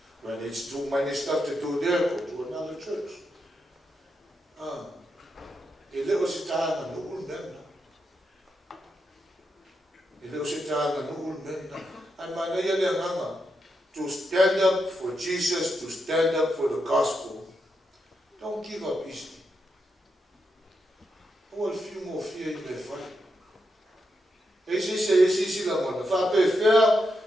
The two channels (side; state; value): both; normal; correlation 0.84